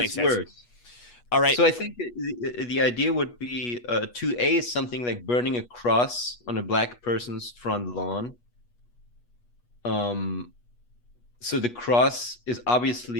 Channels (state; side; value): late; right; 8.3 ms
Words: sense. Worse. All right. So I think the idea would be 2A is something like burning a cross on a black person's front lawn. So the cross is